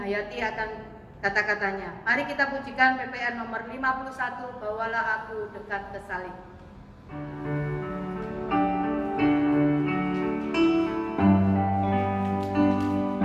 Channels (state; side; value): identical; both; correlation 1.00